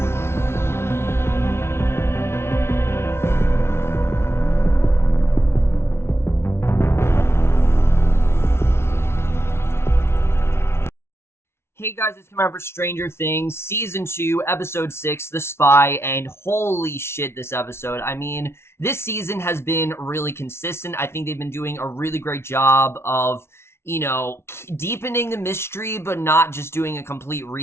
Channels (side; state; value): right; late; 0.12 ms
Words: Hey guys, it's coming out for Stranger Things, Season 2, Episode 6, The Spy, and holy shit, this episode. I mean, this season has been really consistent. I think they've been doing a really great job of, deepening the mystery, but not just doing a complete